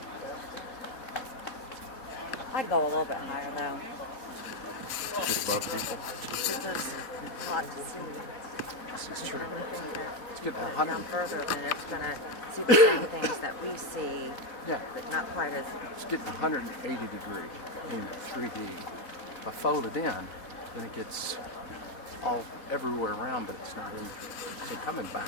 I'd go a little bit higher though. Get above people. Because it's hot to see. This is true. Let's get Come 100. further and it's gonna see the same things that we see, Yeah, but not quite as. it's getting 180 degree in 3D. If I fold it in, then it gets all everywhere around, but it's not in. So coming back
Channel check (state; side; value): late; right; 4.1 ms